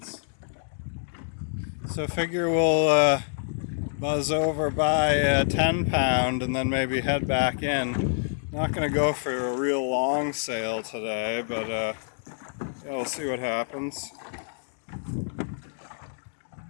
So figure we'll buzz over by a 10-pound and then maybe head back in. Not going to go for a real long sail today, but yeah, we'll see what happens.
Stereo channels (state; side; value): silent; right; digital silence